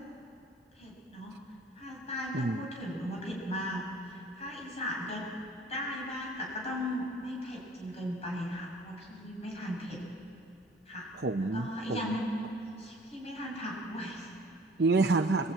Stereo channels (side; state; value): both; normal; correlation 0.51